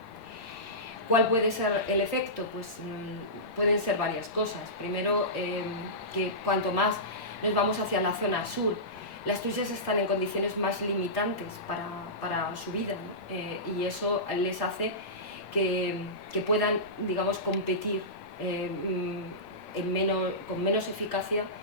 ¿Cuál puede ser el efecto? Pues pueden ser varias cosas. Primero, que cuanto más nos vamos hacia la zona sur, las truchas están en condiciones más limitantes para su vida, ¿no? Y eso les hace que puedan, digamos, competir con menos eficacia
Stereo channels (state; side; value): late; right; 8.7 ms